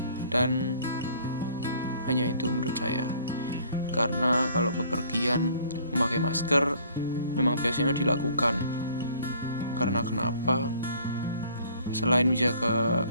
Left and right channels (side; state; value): both; inverted; correlation -0.56